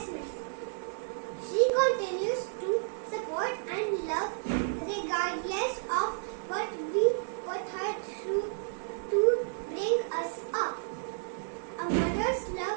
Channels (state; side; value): silent; left; digital silence